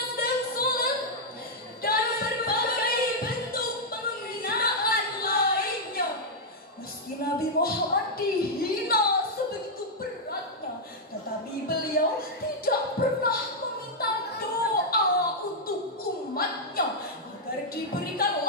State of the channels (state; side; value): normal; both; correlation -0.04